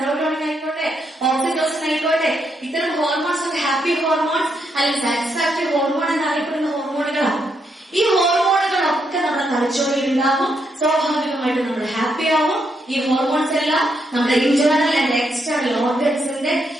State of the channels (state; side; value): normal; both; correlation 0.78